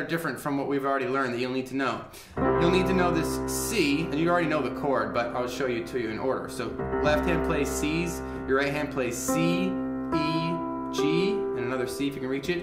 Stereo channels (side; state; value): both; identical; correlation 1.00